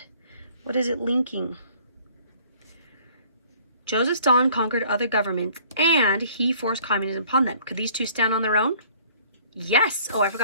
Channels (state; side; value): inverted; both; correlation -0.56